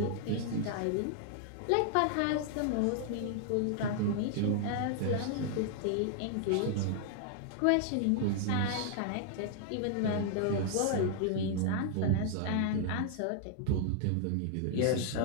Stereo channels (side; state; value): both; different; correlation 0.00